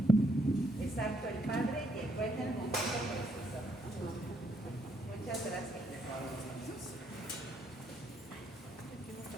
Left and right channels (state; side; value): normal; both; correlation 0.73